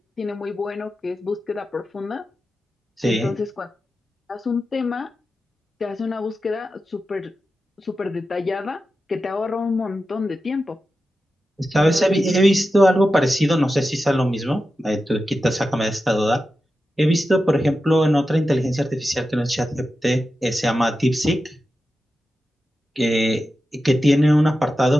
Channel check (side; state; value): both; normal; correlation 0.91